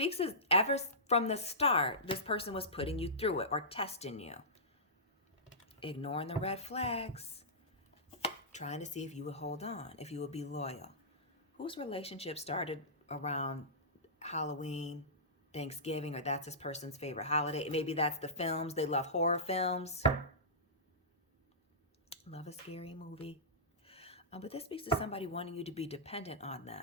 as ever from the start, this person was putting you through it or testing you. Ignoring the red flags. Trying to see if you would hold on, if you would be loyal. Whose relationship started around Halloween, Thanksgiving, or that's this person's favorite holiday? Maybe that's the films. They love horror films. Love a scary movie. But this speaks to somebody wanting you to be dependent on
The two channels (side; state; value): both; normal; correlation -0.19